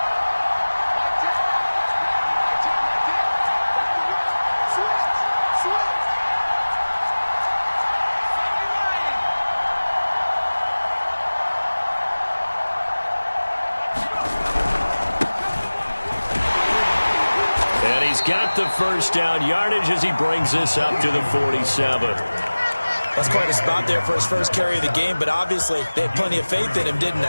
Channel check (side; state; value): both; inverted; correlation -1.00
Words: Got the 1st down yardage as he brings this up to the 47. That's quite a spot there for his 1st carry of the game, but obviously they had plenty of faith in him, didn't